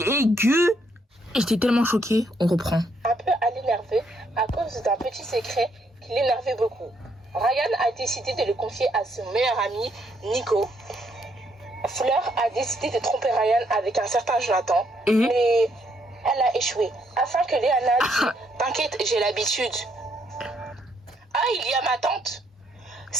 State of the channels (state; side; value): normal; both; correlation 0.72